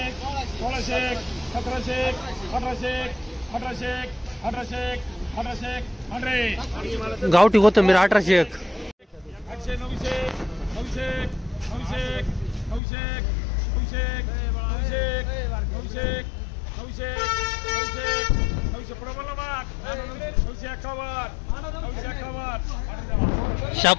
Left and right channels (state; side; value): drops out; right; at 12.8 s